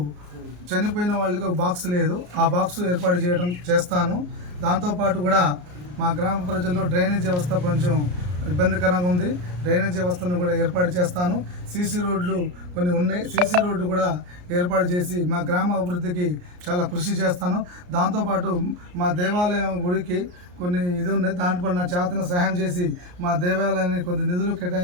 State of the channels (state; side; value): late; left; 34 ms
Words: చనిపోయిన వాళ్ళకి ఒక బాక్స్ లేదు, ఆ బాక్స్ ఏర్పాటు చేస్తాను. దాంతోపాటు కూడా మా గ్రామ ప్రజల్లో డ్రైనేజ్ వ్యవస్థ కొంచెం ఇబ్బందికరంగా ఉంది. డ్రైనేజ్ వ్యవస్థను కూడా ఏర్పాటు చేస్తాను. సీసీ రోడ్లు కొన్ని ఉన్నాయి, సీసీ రోడ్లు కూడా ఏర్పాటు చేసి మా గ్రామ అభివృద్ధికి చాలా కృషి చేస్తాను. దాంతోపాటు మా దేవాలయం గుడికి కొన్ని ఇది ఉన్నాయి, దాంట్లో నా చేతన సహాయం చేసి మా దేవాలయాన్ని కొన్ని నిధులు